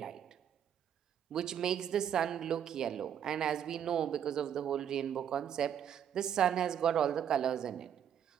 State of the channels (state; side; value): quieter; left; 9.0 dB